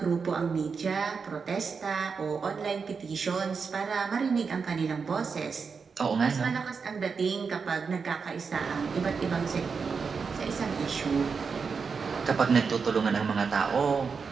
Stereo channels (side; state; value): left; quieter; 5.4 dB